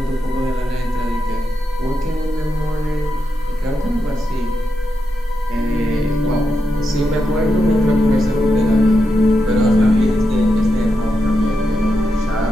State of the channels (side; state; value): both; normal; correlation 0.85